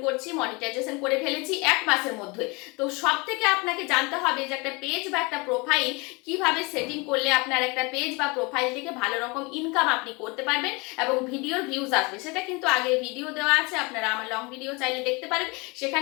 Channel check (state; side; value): quieter; right; 27.3 dB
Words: করছি, মনিটাইজেশন করে ফেলেছি 1 মাসের মধ্যে। তো সব থেকে আপনাকে জানতে হবে যে একটা পেজ বা একটা প্রোফাইল কিভাবে সেটিং করলে আপনার একটা পেজ বা প্রোফাইল থেকে ভালো রকম ইনকাম আপনি করতে পারবেন এবং ভিডিওর ভিউজ আসবে। সেটা কিন্তু আগে ভিডিও দেওয়া আছে, আপনারা আমার লং ভিডিও চাইলে দেখতে পারেন,